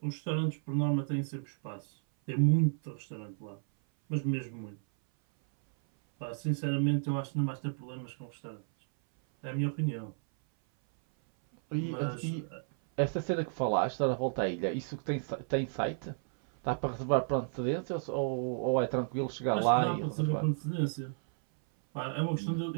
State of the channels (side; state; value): left; silent; 56 dB below the other